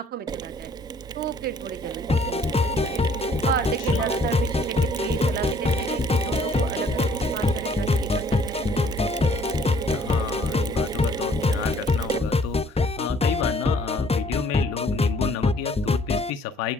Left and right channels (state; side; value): normal; both; correlation 0.60